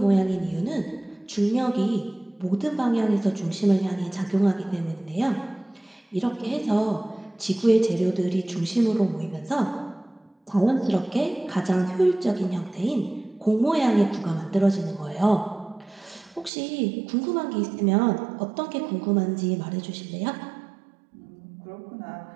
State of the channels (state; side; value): drops out; left; at 16.5 s